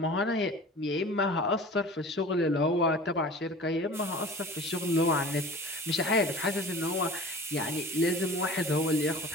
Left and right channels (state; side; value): normal; both; correlation 0.41